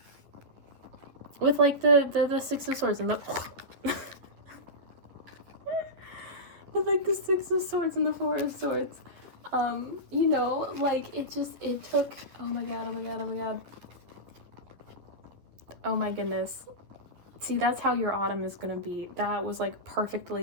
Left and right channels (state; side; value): late; left; 11 ms